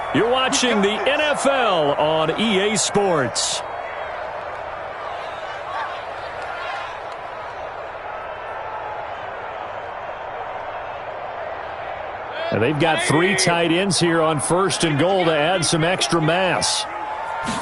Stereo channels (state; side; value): identical; both; correlation 1.00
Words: You're watching the NFL on EA Sports. And they've got 3 tight ends here on 1st and goal to add some extra mass.